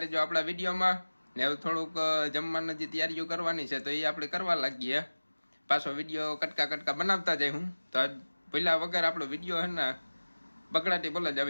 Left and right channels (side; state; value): both; inverted; correlation -1.00